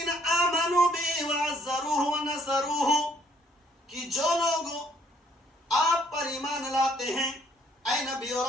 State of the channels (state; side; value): normal; both; correlation 0.65